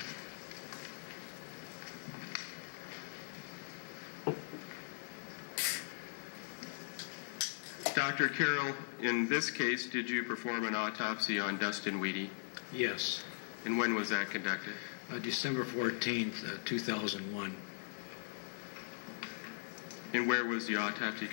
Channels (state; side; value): silent; right; 51 dB below the other